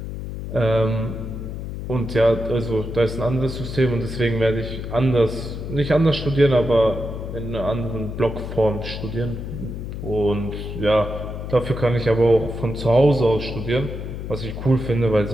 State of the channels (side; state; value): left; noise; hum, 7 dB below the sound